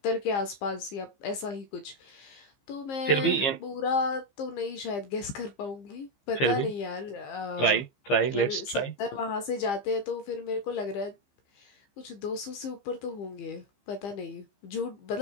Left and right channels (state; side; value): late; right; 15 ms